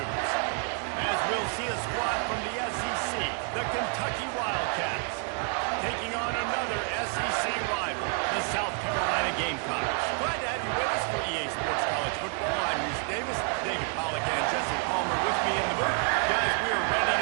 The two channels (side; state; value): left; quieter; 39.5 dB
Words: As we'll see a squad from the SEC, the Kentucky Wildcats, taking on another SEC rival, the South Carolina Gamecocks. Glad to have you with us for EA Sports College Football. I'm Reese Davis, David Pollack, and Jesse Palmer with me in the booth. Guys, we are ready